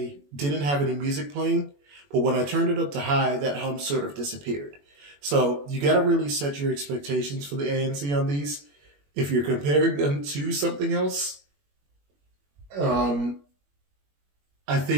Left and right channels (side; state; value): left; late; 21 ms